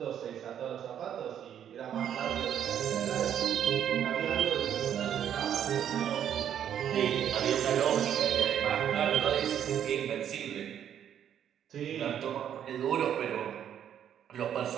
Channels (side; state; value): left; quieter; 9.6 dB